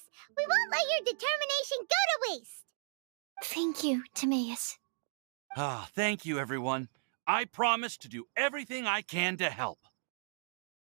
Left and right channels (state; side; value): silent; left; digital silence